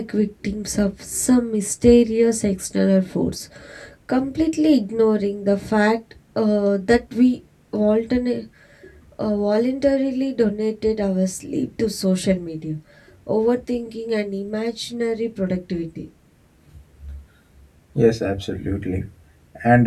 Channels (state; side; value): identical; both; correlation 1.00